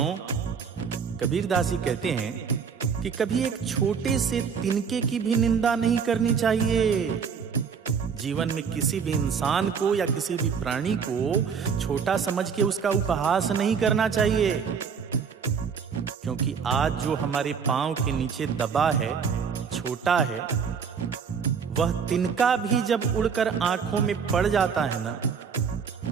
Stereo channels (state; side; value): quieter; left; 6.4 dB